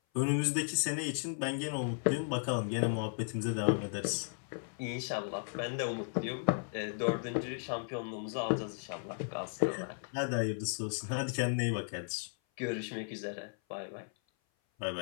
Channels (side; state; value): right; silent; 54 dB below the other